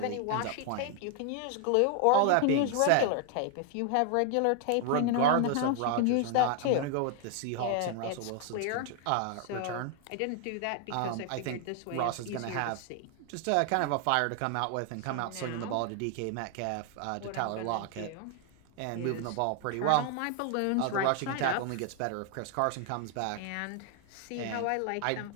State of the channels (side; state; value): both; different; correlation 0.00